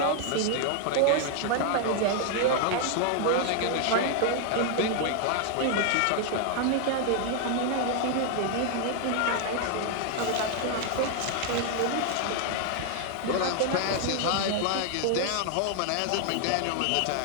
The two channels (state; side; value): different; both; correlation 0.00